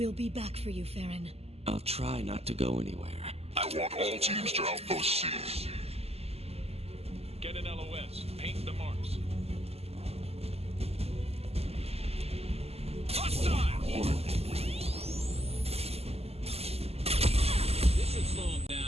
be back for you, Farron. I'll try not to go anywhere. I want all teams to outpost C. Get an LOS. Paint the marks.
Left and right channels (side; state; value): left; late; 0.29 ms